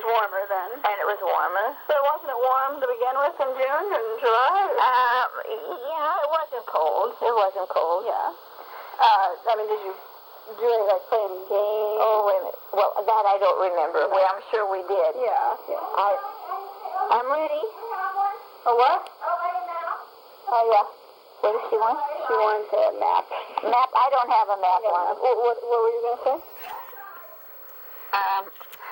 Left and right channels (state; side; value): identical; both; correlation 1.00